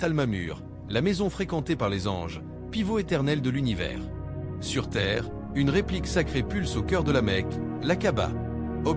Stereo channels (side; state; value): both; identical; correlation 1.00